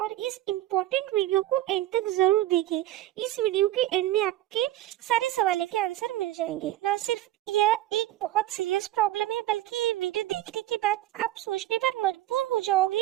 और इस इम्पोर्टेंट वीडियो को एंड तक जरूर देखें। इस वीडियो के एंड में आपके सारे सवालों के आंसर मिल जाएंगे। ना सिर्फ यह एक बहुत सीरियस प्रॉब्लम है बल्कि ये वीडियो देखने के बाद आप सोचने पर मजबूर हो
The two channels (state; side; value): quieter; left; 14.4 dB